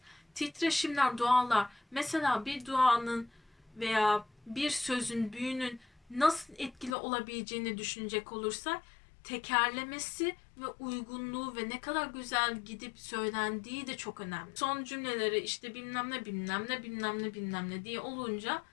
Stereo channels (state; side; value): drops out; right; at 7.0 s